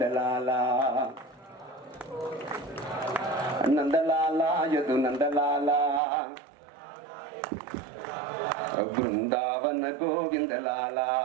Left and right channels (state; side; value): drops out; left; at 6.0 s